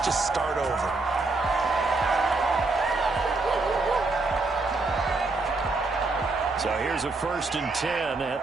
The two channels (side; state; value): left; quieter; 3.5 dB